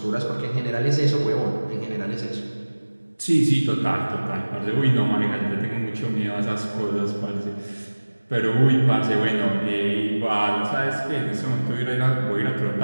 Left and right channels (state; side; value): inverted; both; correlation -1.00